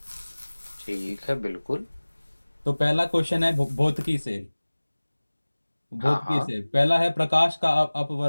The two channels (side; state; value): both; inverted; correlation -1.00